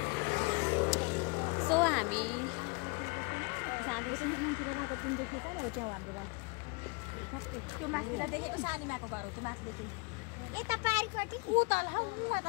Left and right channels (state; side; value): quieter; right; 30.1 dB